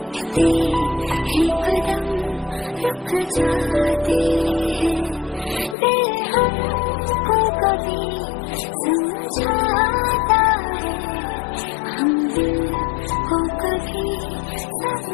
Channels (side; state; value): right; drops out; at 5.8 s